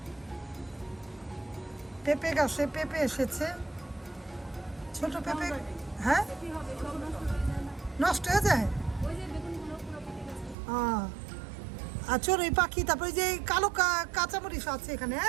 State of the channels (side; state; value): left; drops out; at 10.6 s